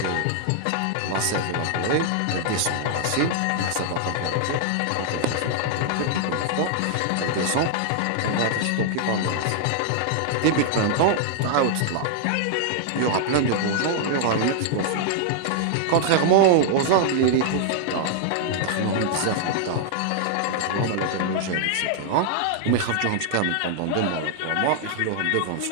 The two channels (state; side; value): different; both; correlation -0.01